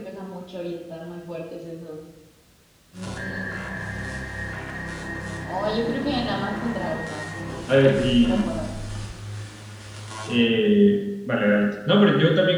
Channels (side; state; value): both; identical; correlation 1.00